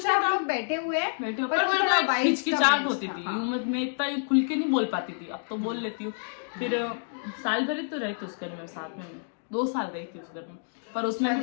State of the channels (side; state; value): right; silent; digital silence